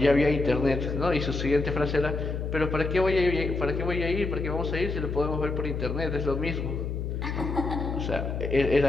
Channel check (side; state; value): left; noise; hum, 3 dB below the sound